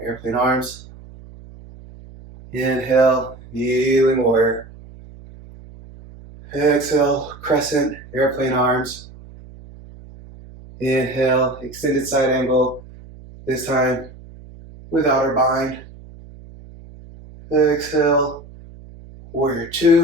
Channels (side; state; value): right; noise; hum, 19 dB below the sound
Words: airplane arms. Inhale, kneeling warrior. Exhale, crescent, airplane arms. Inhale, extended side angle, this time without our bind. Exhale, warrior